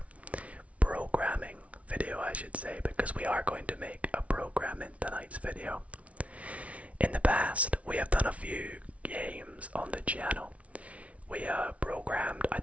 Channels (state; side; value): late; left; 0.065 ms